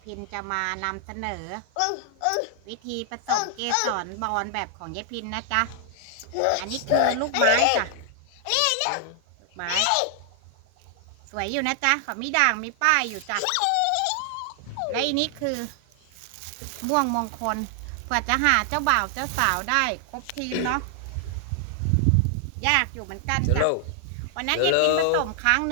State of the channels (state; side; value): different; both; correlation 0.00